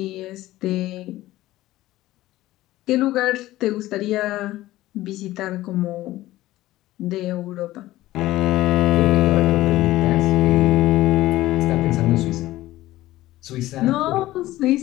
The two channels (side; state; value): right; quieter; 16.2 dB